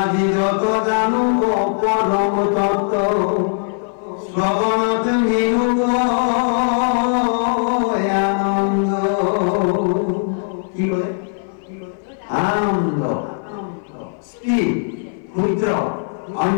যত জানু পরম তত্ত্ব, শ্রবণত মিনু আনন্দ। কি বলে? আনন্দ। স্ত্রী, ক্ষুদ্র,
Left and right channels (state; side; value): silent; right; 59 dB below the other